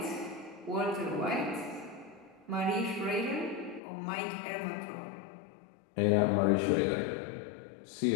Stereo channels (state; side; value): drops out; right; at 3.8 s